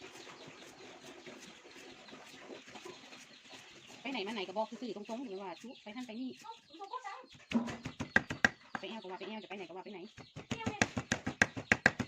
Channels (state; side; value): identical; both; correlation 1.00